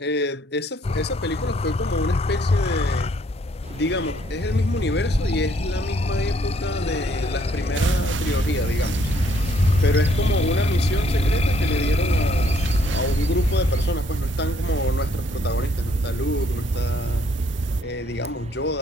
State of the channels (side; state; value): both; normal; correlation 0.67